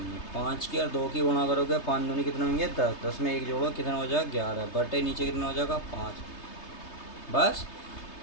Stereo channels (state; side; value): late; right; 3.3 ms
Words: है। 5 की और 2 की गुणा करोगे 5 दूनी कितने होंगे 10, 10 में 1 जोड़ो कितना हो जाएगा 11 बटे नीचे कितना हो जाएगा 5। बस